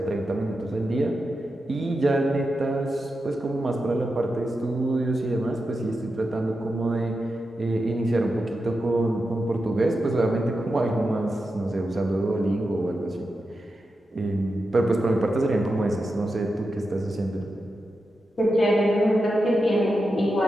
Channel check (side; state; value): both; normal; correlation 0.89